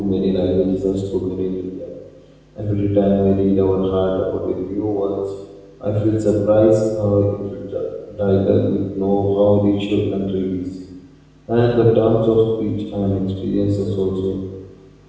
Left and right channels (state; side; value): identical; both; correlation 1.00